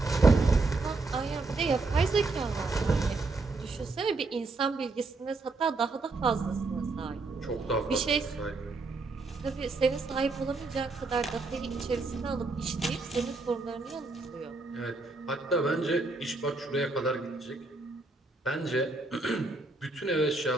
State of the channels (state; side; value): quieter; left; 3.5 dB